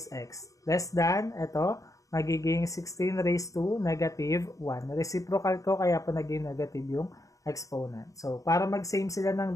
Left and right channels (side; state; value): right; late; 0.16 ms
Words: x. Less than, ito, magiging 16 raised to negative 1. Reciprocal ko, kaya po naging negative yung exponent. So, para mag-same sila ng